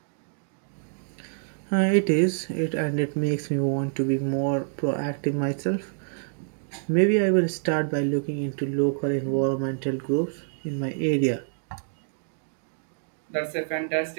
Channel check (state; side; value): silent; left; digital silence